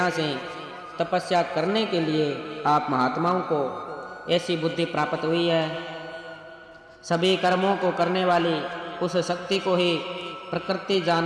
से तपस्या करने के लिए आप महात्माओं को ऐसी बुद्धि प्राप्त हुई है। सभी कर्मों को करने वाली उस शक्ति को ही प्रकृति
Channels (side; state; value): both; identical; correlation 1.00